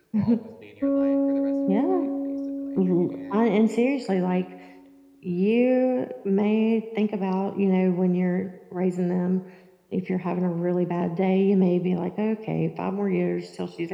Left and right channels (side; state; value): both; identical; correlation 1.00